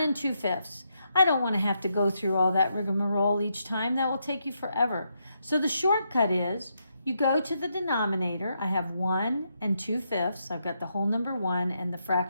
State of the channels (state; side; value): inverted; both; correlation -0.80